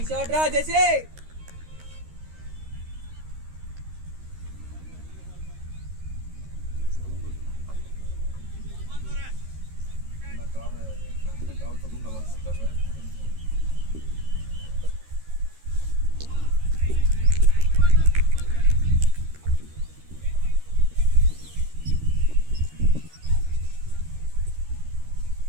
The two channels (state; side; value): late; left; 13 ms